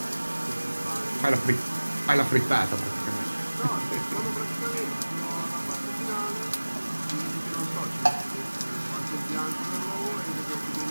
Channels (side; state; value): both; inverted; correlation -1.00